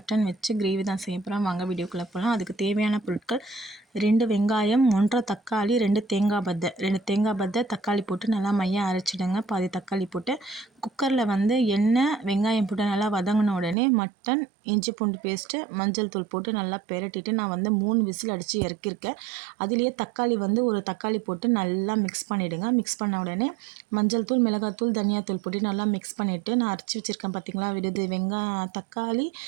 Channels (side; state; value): left; drops out; at 13.8 s